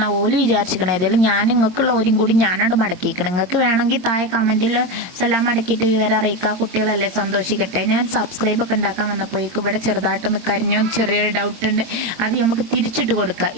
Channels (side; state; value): left; late; 22 ms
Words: ഓല് വിചാരിച്ചിരിക്കണം. ഏതായാലും ഞാൻ നിങ്ങൾക്കുള്ള ഓരും കൂടി ഞാനവിടെ മടക്കിയിരിക്കണം. നിങ്ങൾക്ക് വേണമെങ്കിൽ താഴെ കമൻറ്റിൽ സലാം മടക്കിയിട്ട് വിവരം അറിയിക്കുക. കുട്ടികളല്ലേ, സന്തോഷിക്കട്ടെ. ഞാൻ സബ്സ്ക്രൈബൊക്കെ ഉണ്ടാക്കാൻ വന്നപ്പോഴേക്കും ഇവിടെ ചെറുതായിട്ടൊന്ന് കരിഞ്ഞോ ചെറിയൊരു ഡൗട്ട് ഉണ്ട്, അത് നമുക്ക് തിരിച്ചിട്ട് കൊടുക്കുക.